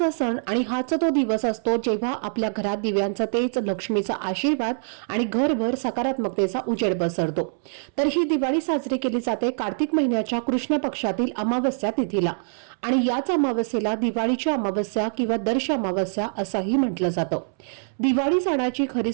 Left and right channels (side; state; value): left; silent; 62 dB below the other